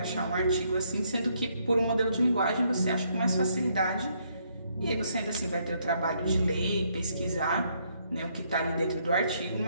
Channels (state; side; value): inverted; both; correlation -0.72